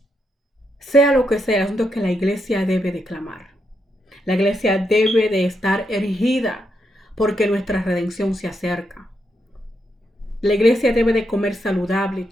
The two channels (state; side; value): normal; both; correlation 0.81